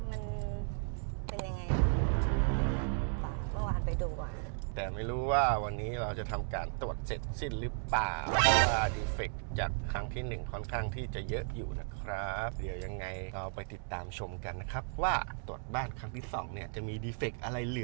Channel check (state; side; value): silent; left; 55 dB below the other